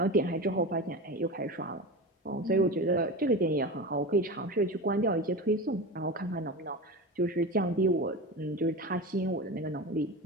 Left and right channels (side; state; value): both; normal; correlation 0.26